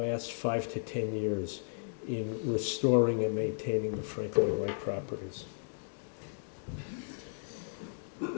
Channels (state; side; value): silent; right; digital silence